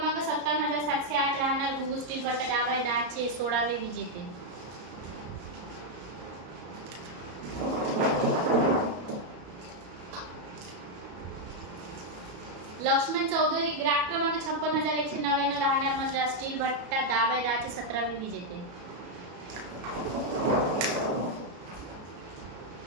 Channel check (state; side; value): late; left; 34 ms